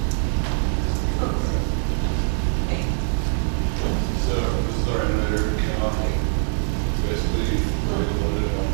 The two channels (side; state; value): left; silent; 59 dB below the other